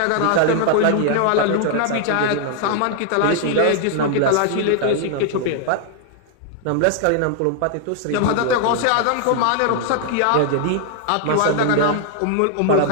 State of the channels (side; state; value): both; different; correlation 0.00